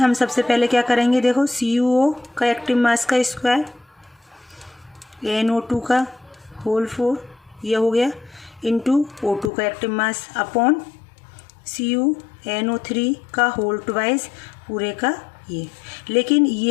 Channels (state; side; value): drops out; right; at 9.5 s